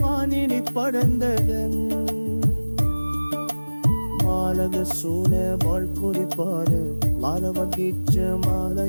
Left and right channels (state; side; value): inverted; both; correlation -1.00